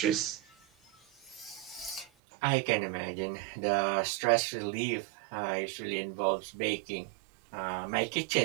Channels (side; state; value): left; drops out; at 2.1 s